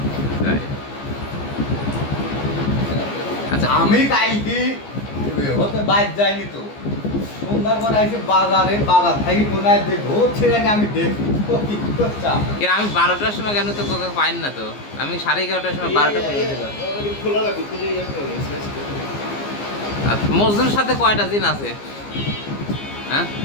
তাই। আচ্ছা আমি কালকে হতে বাইর যাইনি তো, সন্ধ্যার পর আইসি বাজারে, বাজার থেকে কোনায় দেখবো ছেলে আমি দেখবো কি করছা। কিন্তু আমি 12টার সময় কেন তো কোকা পাইন না তো, আমি 11:30টার সময় 12টা পর্যন্ত। আর মজনুর সাথে কয়টা জিন আছে হ্যাঁ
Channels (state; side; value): late; right; 15 ms